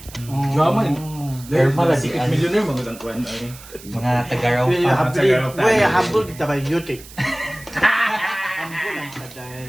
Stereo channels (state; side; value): noise; right; hiss, 18 dB below the sound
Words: Drama yun. Thermal, Secret millionaire, magandang kuwan. Mga Tagaraw Uy, pa. habol kita ba yuti? Habol ang